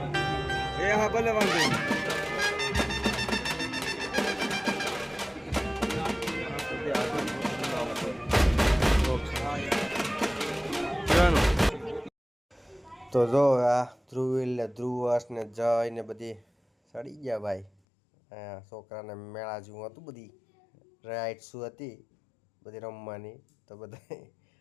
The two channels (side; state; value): right; drops out; at 17.7 s